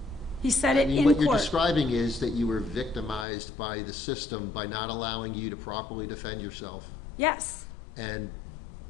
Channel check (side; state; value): right; drops out; at 3.2 s